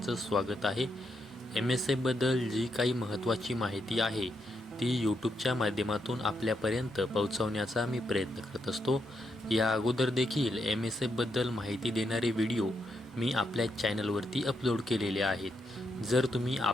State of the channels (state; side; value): normal; both; correlation 0.80